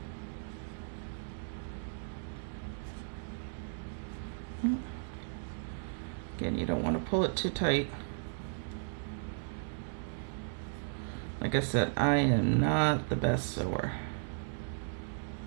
Again, you don't want to pull it too tight. Like I said, I am not the best sewer.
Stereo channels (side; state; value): left; silent; digital silence